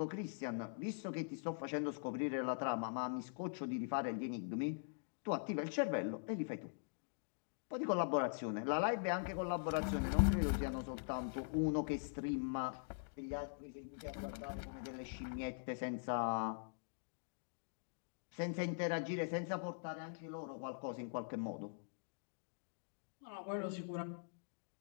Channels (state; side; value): silent; right; digital silence